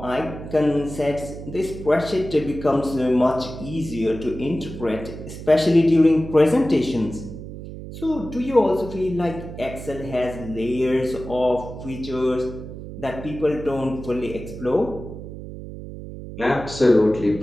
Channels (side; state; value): right; noise; hum, 11 dB below the sound